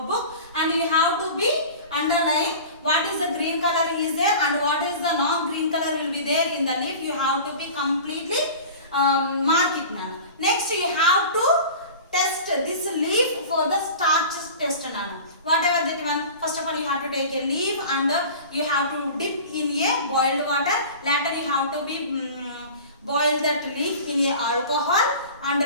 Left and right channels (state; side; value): inverted; both; correlation -0.37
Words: and you have to be underline what is the green color is there and what is the non-green color will be there in the leaf. You have to be completely mark it now. Next you have to test this leaf for the starch test nana. Whatever that one, first of all you have to take a leaf and you have to dip in a boiled water. Later you have to be boil that leaf in a alcohol and